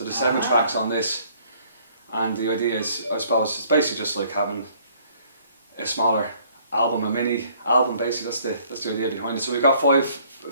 there's 7 tracks on this, and the idea is, I suppose, it's basically just like having a smaller album, a mini album. Basically, that's the idea behind it. So we've got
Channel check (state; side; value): inverted; both; correlation -0.61